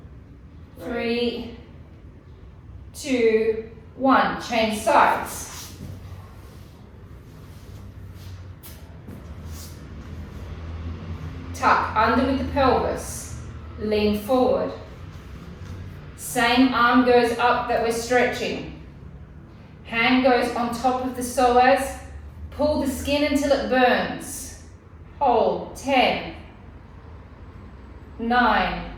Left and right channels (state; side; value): identical; both; correlation 1.00